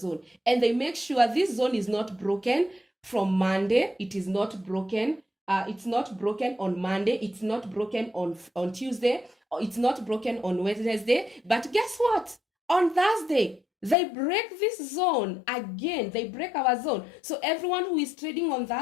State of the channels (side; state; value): right; drops out; at 14.0 s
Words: And they make sure this zone is not broken from Monday. It is not broken. It's not broken on Monday. It's not broken on Tuesday. Or it's not broken on Wednesday. But guess what? On Thursday, they break this zone again. They break our zone. So everyone who is trading on